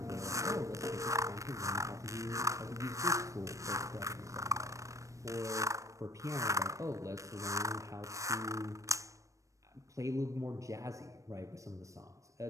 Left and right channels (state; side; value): late; left; 0.15 ms